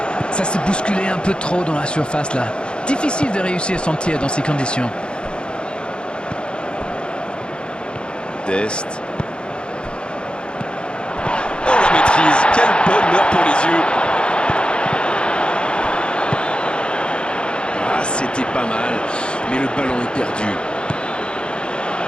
Ça s'est bousculé un peu trop dans la surface là. Difficile de réussir son tir dans ces conditions. Dest. Oh, la maîtrise. Quel bonheur pour les yeux. Ah, c'était pas mal, mais le ballon est perdu.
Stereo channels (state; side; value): late; right; 0.054 ms